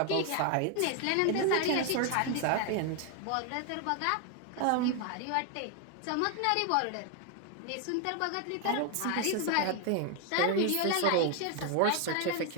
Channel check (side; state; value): both; different; correlation 0.01